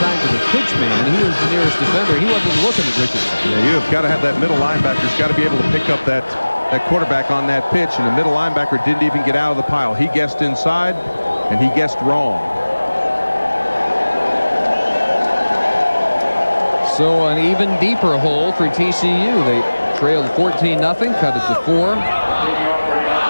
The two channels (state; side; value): inverted; both; correlation -1.00